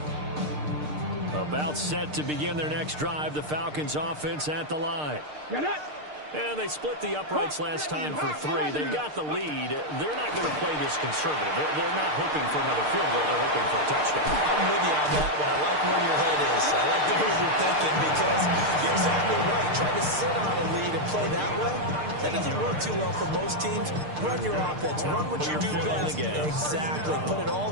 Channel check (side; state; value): left; late; 6.6 ms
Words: About set to begin their next drive. The Falcons offense at the line. And they split the uprights last time for 3. They've got the lead. They're not going to play this conservative. They're not hoping for another field goal. They're hoping for a touchdown. I'm with you on that one. I like where your head is. I like the way you're thinking because you're exactly right. Trying to sit on a lead and play that way, that doesn't work too well for most teams. Run your offense. Run what you do best. Exactly. Put it